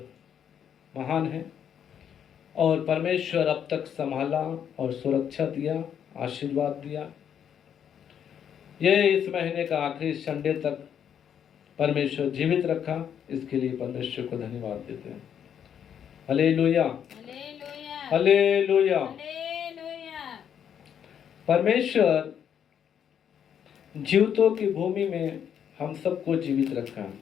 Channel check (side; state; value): right; quieter; 8.7 dB